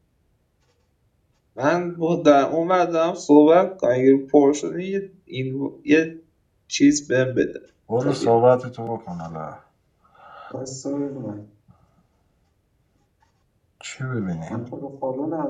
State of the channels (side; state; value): both; identical; correlation 1.00